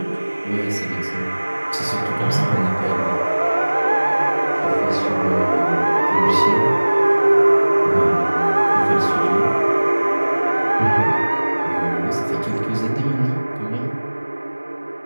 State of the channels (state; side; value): inverted; both; correlation -1.00